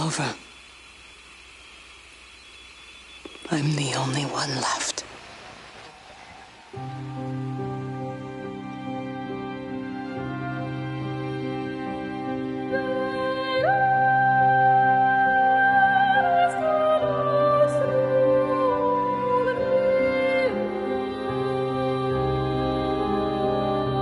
I'm the only one left.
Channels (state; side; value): identical; both; correlation 1.00